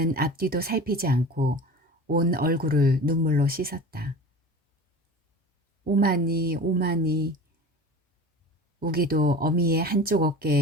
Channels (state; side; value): normal; both; correlation 0.35